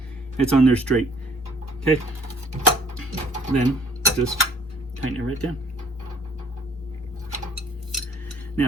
it's on there straight. Okay, then just tighten it right down.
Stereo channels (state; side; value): normal; both; correlation 0.57